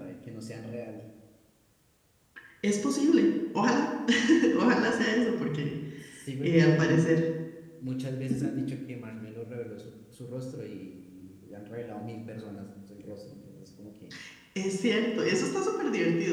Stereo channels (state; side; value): identical; both; correlation 1.00